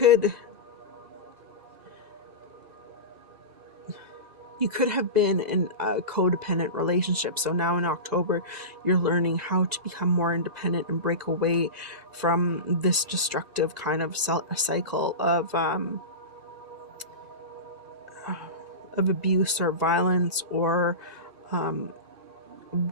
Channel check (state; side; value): late; left; 1.9 ms